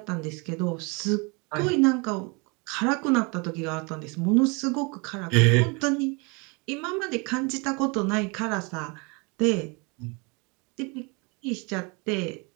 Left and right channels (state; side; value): quieter; left; 30.3 dB